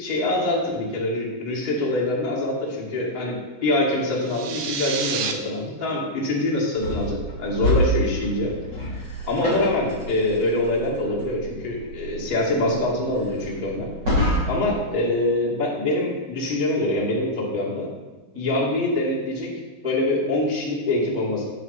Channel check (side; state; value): left; late; 8.6 ms